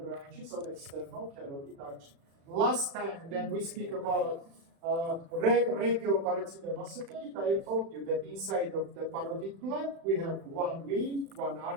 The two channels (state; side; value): late; left; 36 ms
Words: of external carotid artery. Last time, then we speak about Regio I told you that inside of the parotid gland we have one vein, one